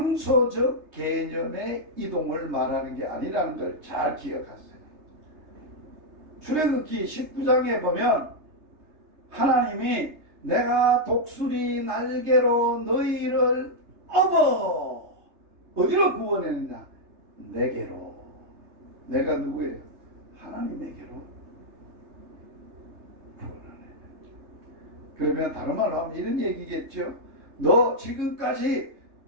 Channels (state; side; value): late; left; 3.3 ms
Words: 개념의 이동을 말하는 게 아니라는 걸 잘 기억하세요. 출애굽기 19장에 보면 하나님이 내가 독수리 날개로 너희를 업어 어디로 구원했느냐? 내게로. 내가 누구예요? 하나님에게로 구원하네. 그러면 다른 말로 하면 이런 얘기겠죠. 너 지금까지